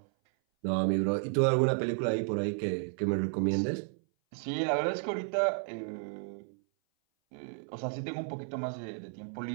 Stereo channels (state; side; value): silent; left; 56 dB below the other